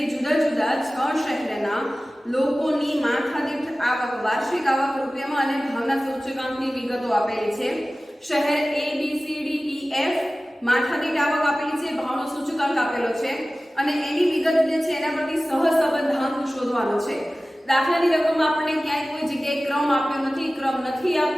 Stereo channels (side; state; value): both; normal; correlation 0.97